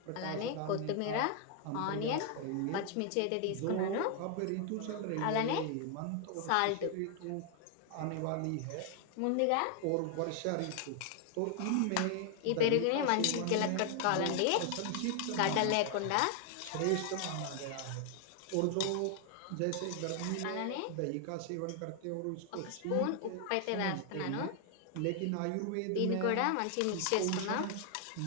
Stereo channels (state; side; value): different; both; correlation 0.00